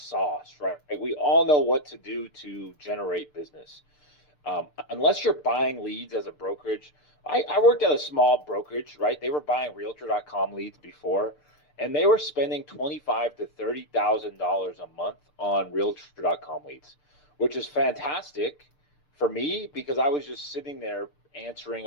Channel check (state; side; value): late; right; 6.7 ms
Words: right? We all know what to do to generate business. Unless you're buying leads as a brokerage, I worked at a small brokerage, right? They were buying Realtor.com leads before, and they were spending 25 to $30,000 a month on Realtor.com leads, which is fantastic for me because I was just sitting there answering